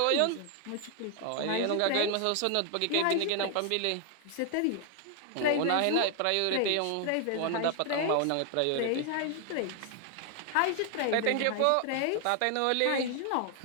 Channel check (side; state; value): both; different; correlation 0.00